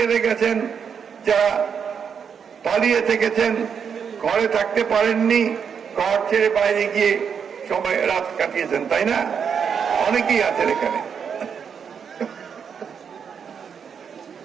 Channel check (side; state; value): left; quieter; 7.0 dB